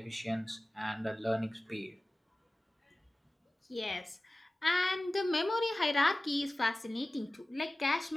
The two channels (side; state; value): both; normal; correlation 0.97